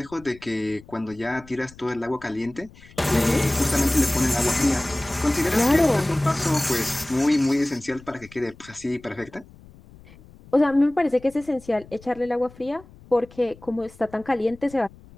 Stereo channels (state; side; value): noise; left; rumble, 23 dB below the sound